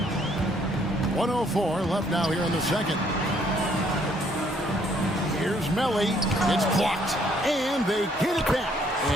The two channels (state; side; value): normal; both; correlation 0.66